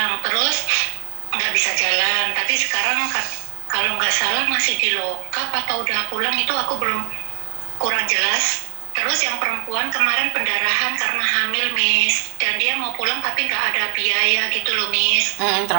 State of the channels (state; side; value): quieter; left; 39.9 dB